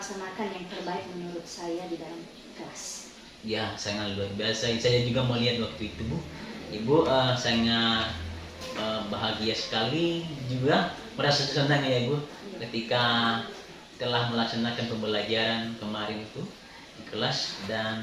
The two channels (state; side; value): identical; both; correlation 1.00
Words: yang terbaik menurut saya di dalam kelas. Ya, sangat luar biasa. Saya juga melihat waktu itu Bu, Ibu sangat bahagia sekali, juga merasa senang ya Bu, ketika telah melaksanakan pembelajaran kemarin itu di kelas,